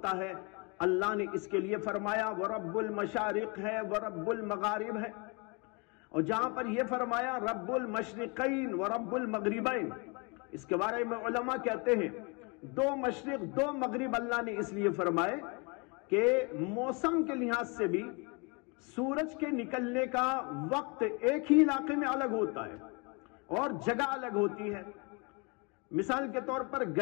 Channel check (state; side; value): quieter; right; 31.3 dB